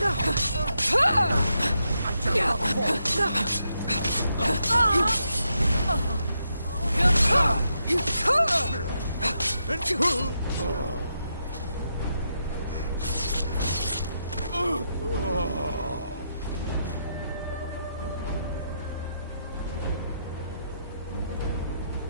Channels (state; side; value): inverted; both; correlation -0.81